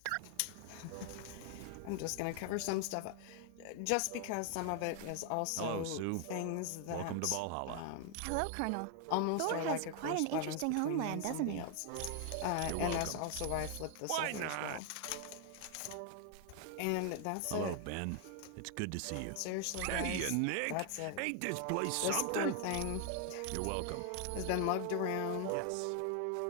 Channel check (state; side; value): different; both; correlation 0.00